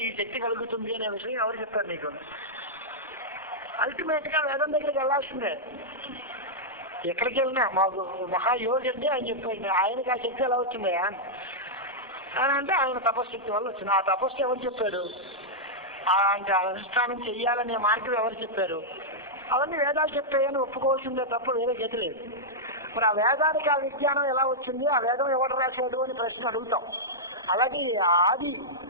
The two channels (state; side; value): normal; both; correlation -0.08